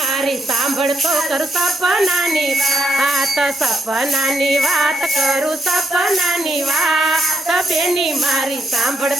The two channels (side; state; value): both; normal; correlation 0.78